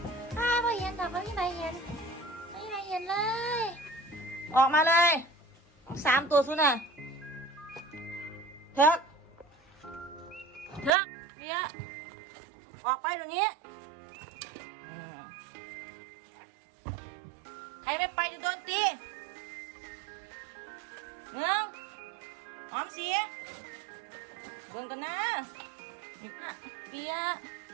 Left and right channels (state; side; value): drops out; left; at 10.9 s